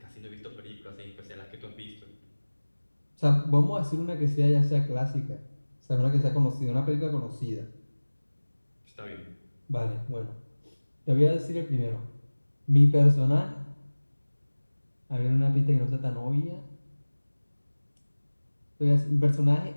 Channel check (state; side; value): inverted; both; correlation -1.00